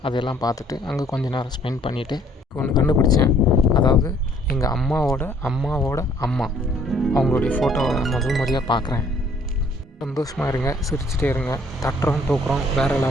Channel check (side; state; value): both; normal; correlation 0.61